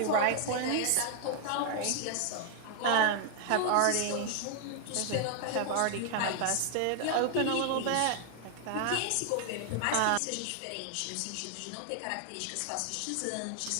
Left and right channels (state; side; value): different; both; correlation 0.00